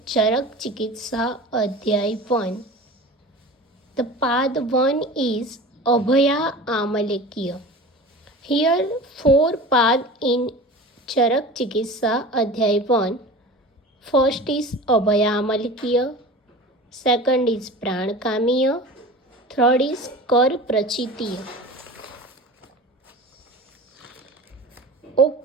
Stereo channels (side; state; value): both; normal; correlation 0.36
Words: Charak Chikitsa Adhyay 1. The part 1 is Abhaya Amalekya. Here, 4 paths in Charak Chikitsa Adhyay 1. First is Abhaya Amalekya. Second is Pranakamiya. Third is Kar Prachitiya.